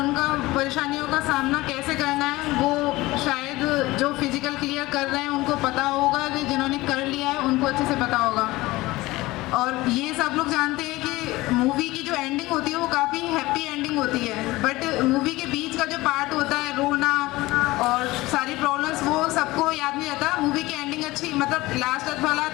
परेशानियों का सामना कैसे करना है वो शायद जो फिजिकल क्लियर कर रहे हैं उनको पता होगा, जिन्होंने कर लिया है उनको अच्छे से पता होगा। और ये सब लोग जानते हैं कि मूवी की जो एंडिंग होती है वो काफ़ी हैप्पी एंडिंग होती है, बट मूवी के बीच का जो पार्ट होता है, रोना और सारी प्रॉब्लम्स, वो सबको याद नहीं रहता। मूवी की एंडिंग अच्छी, मतलब लास्ट तक वाला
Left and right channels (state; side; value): quieter; right; 19.5 dB